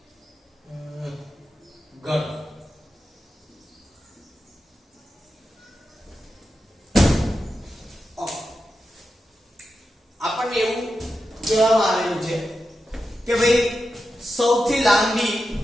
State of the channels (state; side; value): normal; both; correlation 0.90